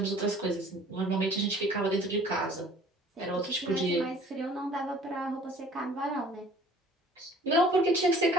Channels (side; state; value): both; normal; correlation 0.51